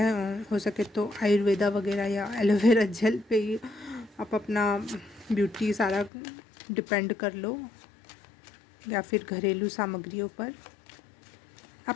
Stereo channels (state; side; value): drops out; right; at 6.1 s